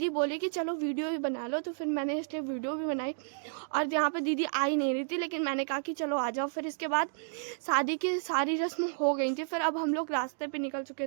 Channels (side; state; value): left; silent; digital silence